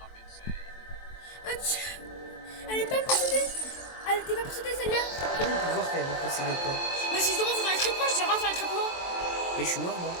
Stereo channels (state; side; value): late; right; 23 ms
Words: insane. Mathieu, elle est pas possédée. Elle était pas possédée celle-là. Comment on peut voir qu'elle est possédée ou pas? Mais si je demande sur les traitements, je dirais sur les traitements. Mais je suis mort, moi.